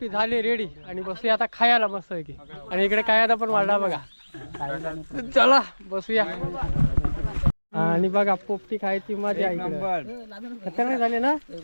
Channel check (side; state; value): both; inverted; correlation -1.00